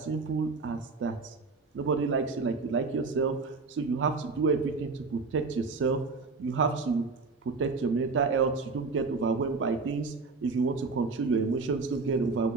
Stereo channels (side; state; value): left; quieter; 4.2 dB